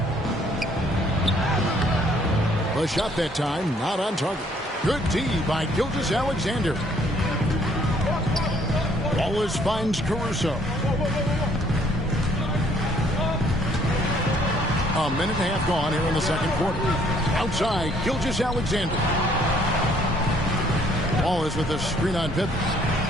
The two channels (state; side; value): normal; both; correlation 0.63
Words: The shot that time, not on target. Good D by Gilgeous-Alexander. Wallace finds Caruso. A minute and a half gone here in the second quarter. Outside, Gilgeous-Alexander. Wallace with a screen on Pippen.